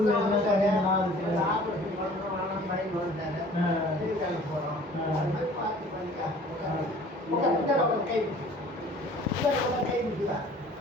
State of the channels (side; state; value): both; normal; correlation 0.49